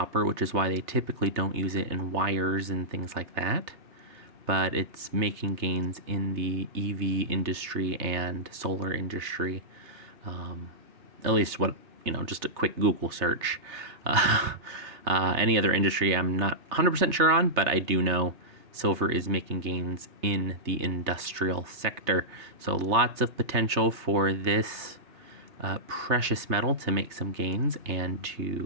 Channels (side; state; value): left; late; 3.3 ms